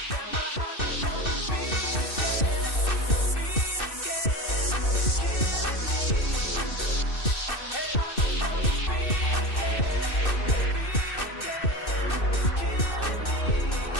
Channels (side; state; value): right; late; 2.6 ms